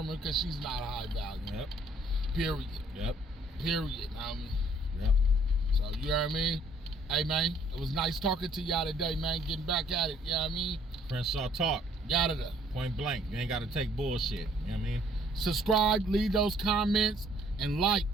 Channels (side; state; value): both; normal; correlation 0.61